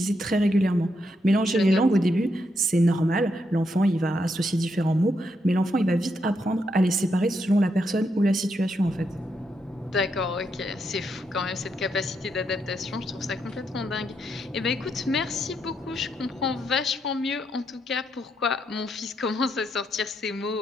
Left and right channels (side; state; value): both; normal; correlation 0.79